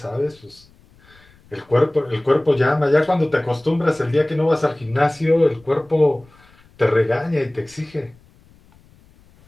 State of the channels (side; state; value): left; noise; rumble, 29 dB below the sound